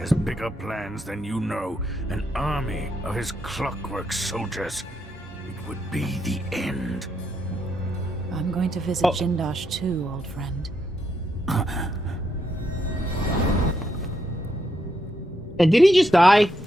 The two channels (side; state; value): both; normal; correlation 0.79